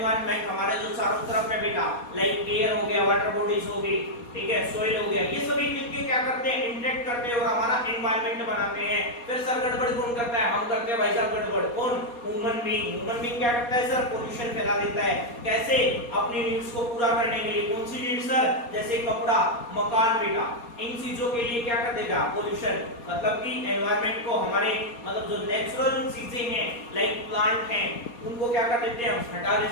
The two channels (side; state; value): right; late; 4.2 ms